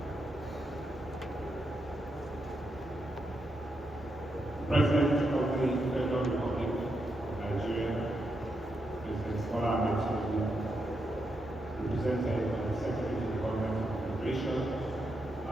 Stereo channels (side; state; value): both; normal; correlation 0.83